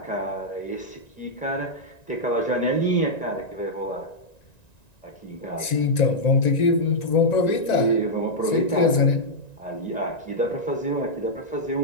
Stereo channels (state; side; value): late; right; 1.9 ms